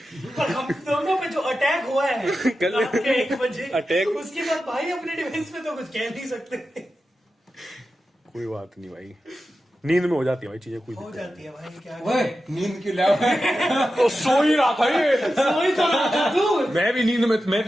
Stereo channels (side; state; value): both; normal; correlation 0.92